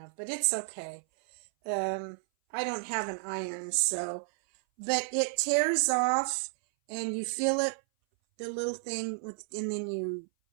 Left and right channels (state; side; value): silent; left; 57 dB below the other